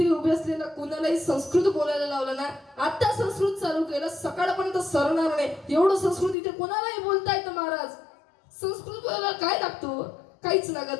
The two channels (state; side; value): drops out; right; at 6.4 s